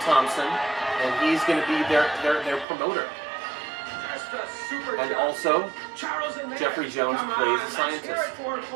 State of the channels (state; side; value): drops out; left; at 2.7 s